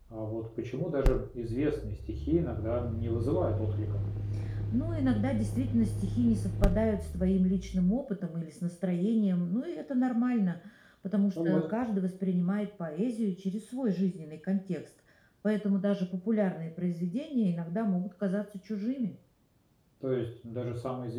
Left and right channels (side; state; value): both; identical; correlation 1.00